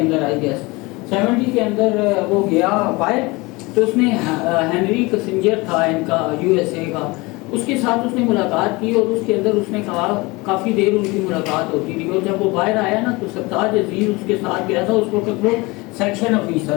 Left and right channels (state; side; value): quieter; right; 24.0 dB